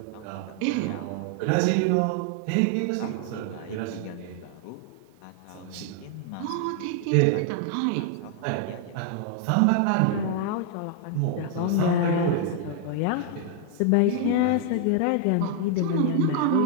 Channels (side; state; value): both; different; correlation 0.00